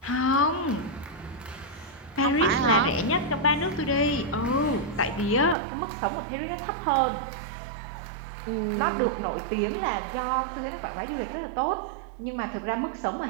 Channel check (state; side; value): drops out; left; at 5.6 s